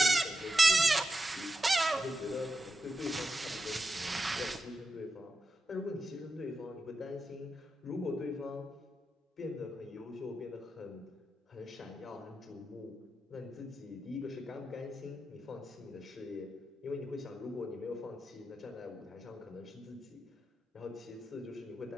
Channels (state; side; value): normal; both; correlation 0.89